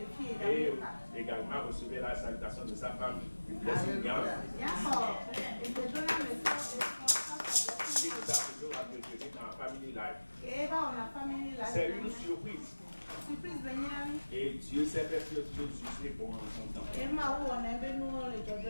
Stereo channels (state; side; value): inverted; both; correlation -1.00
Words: Et également recevez la salutation de sa femme, du blessing. qui nous a toujours entretenus dans Family Life. C'est une surprise. Et Dieu sait faire ce que Dieu est bon en son temps.